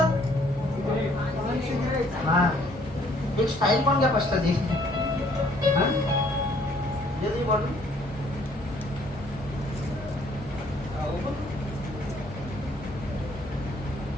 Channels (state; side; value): normal; both; correlation 0.62